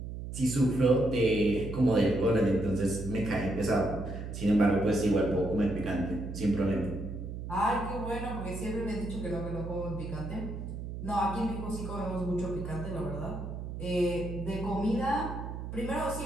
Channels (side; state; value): right; noise; hum, 7 dB below the sound